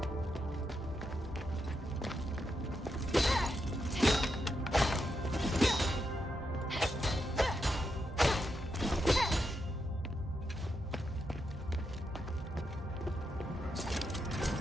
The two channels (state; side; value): normal; both; correlation 0.83